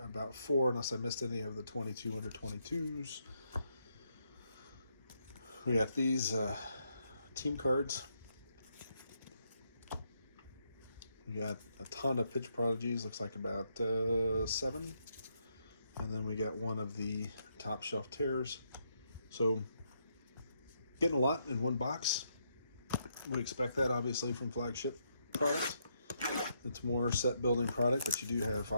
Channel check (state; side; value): inverted; both; correlation -0.77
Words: 4, unless I missed any of the 22 under 22s. We got these team cards. We got a ton of Pitch Prodigies, looks like about 7. And then we got 1 of the Top Shelf Terrors. So, getting a lot in one box. We expect that, obviously, from flagship product. It's more set building product, but you do have,